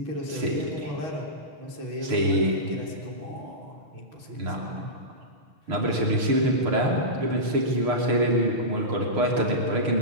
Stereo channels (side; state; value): left; late; 6.6 ms